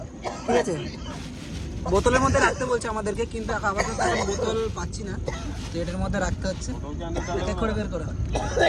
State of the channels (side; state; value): both; identical; correlation 1.00